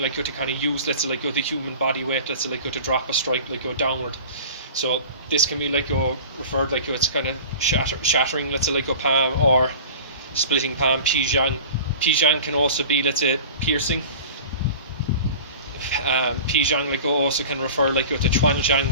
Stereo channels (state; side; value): inverted; both; correlation -0.39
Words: like to kind of use, let's say, like the human body weight, let's say, like to drop a strike like downward. So this can be like referred like it's kind of shattering, let's say, like palm, or splitting palm, pizhang. Pizhang can also be, let's say, piercing. Pizhang like also can refer like to chuanzhang,